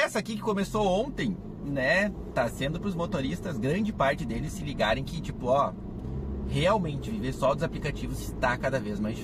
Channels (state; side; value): identical; both; correlation 1.00